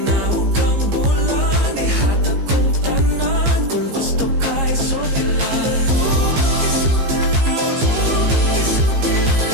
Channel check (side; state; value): left; late; 15 ms